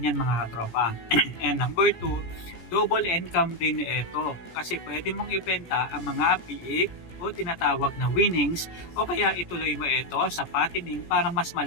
mga katropa. And number 2, double income din ito kasi pwede mong ibenta ang mga biik o tinatawag na winnings o kaya ituloy mo ito sa fattening para mas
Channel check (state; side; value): late; right; 17 ms